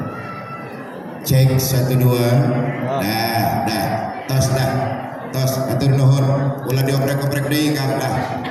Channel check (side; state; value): both; identical; correlation 1.00